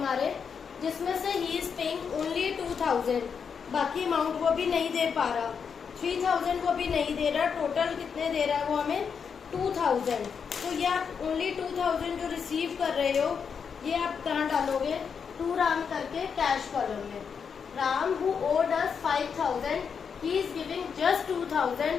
जिसमें से ही इज पेइंग ओनली 2000, बाकी अमाउंट वो भी नहीं दे पा रहा, 3000 वो भी नहीं दे रहा, टोटल कितने दे रहा है वो हमें 2000। तो ये आप ओनली 2000 जो रिसीव कर रहे हो ये आप कहाँ डालोगे, टू राम करके कैश कॉलम में। Ram who owed us 5000, he is giving just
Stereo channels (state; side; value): quieter; right; 6.5 dB